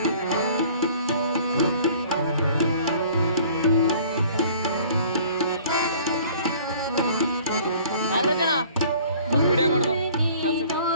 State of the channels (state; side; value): inverted; both; correlation -0.52